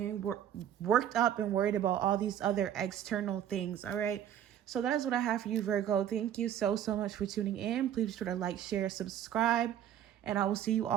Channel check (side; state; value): left; quieter; 10.3 dB